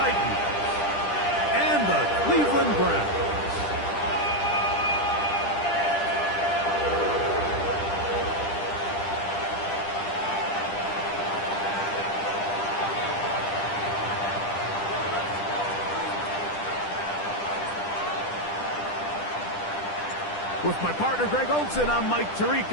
and the Cleveland Browns. With my partner, Greg Olson, I'm Mike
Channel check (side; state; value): right; late; 10 ms